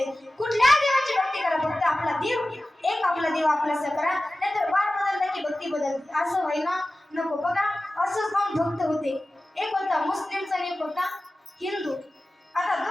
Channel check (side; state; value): both; normal; correlation 0.96